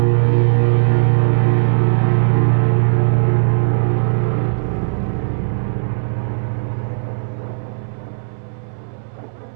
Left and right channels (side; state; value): left; silent; 66 dB below the other